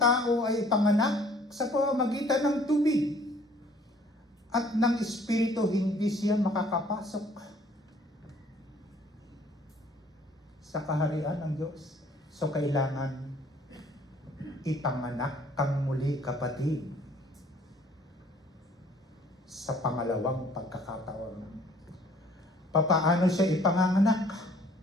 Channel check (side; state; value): both; normal; correlation 0.57